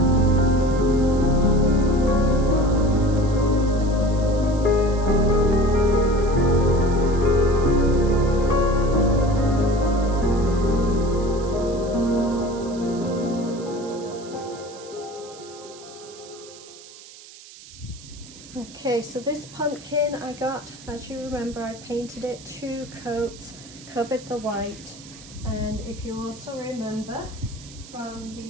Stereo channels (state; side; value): noise; right; hiss, 19 dB below the sound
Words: Okay, so this pumpkin I got, as you remember, I painted it 2 coats, covered the white, and if you also remember from